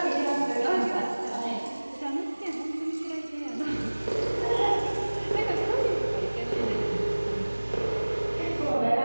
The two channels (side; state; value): both; inverted; correlation -1.00